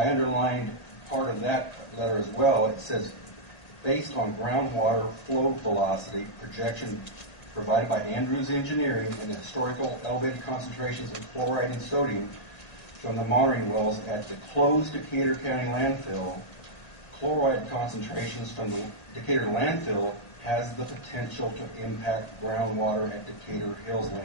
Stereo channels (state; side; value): late; right; 1.9 ms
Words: underlined part of that letter as well. It says, based on groundwater flow velocity projection provided by Andrews Engineering and the historical elevated concentrations of chloride and sodium from the monitoring wells at the closed Decatur County landfill, chloride concentrations from the Decatur landfill has the potential to impact groundwater at Decatur Hills